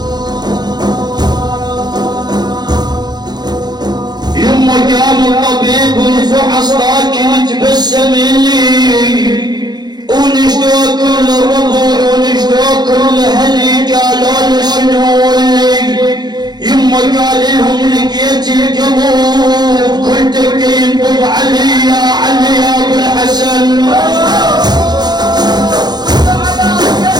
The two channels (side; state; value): left; late; 0.20 ms